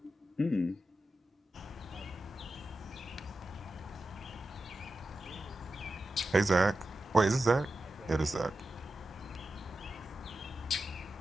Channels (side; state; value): both; normal; correlation 0.91